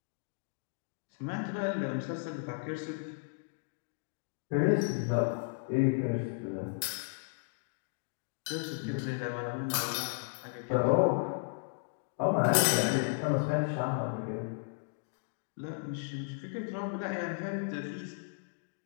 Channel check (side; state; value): right; quieter; 35.4 dB